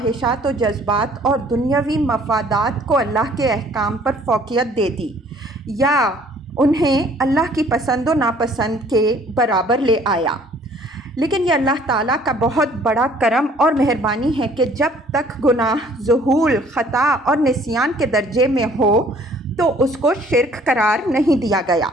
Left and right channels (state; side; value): normal; both; correlation 0.57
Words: و جذبات اور دنیاوی مفادات کو اللہ کے احکام پر فوقیت دے دی، یا انہیں اللہ کی پسند و ناپسند کے برابر لے آیا۔ لیکن یہ اللہ تعالیٰ کا بہت بڑا کرم اور مہربانی ہے کہ جب تک گناہ ظہول، خطا اور نسیان کے درجے میں ہو تو اس کو شرک قرار نہیں دیا گیا۔